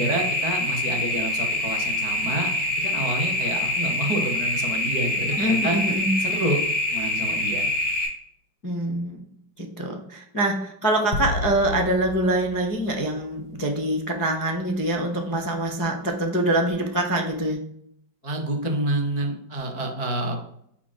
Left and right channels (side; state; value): right; late; 4.9 ms